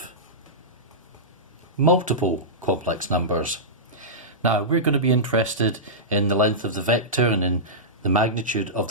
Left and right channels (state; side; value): normal; both; correlation -0.14